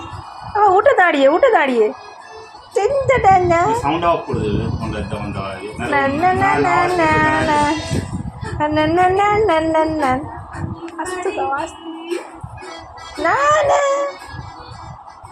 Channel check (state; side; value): identical; both; correlation 1.00